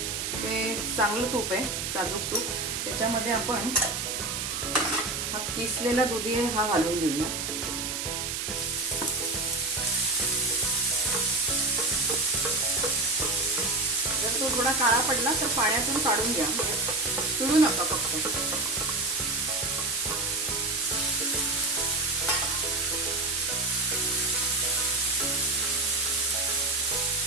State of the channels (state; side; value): noise; right; hiss, 3 dB below the sound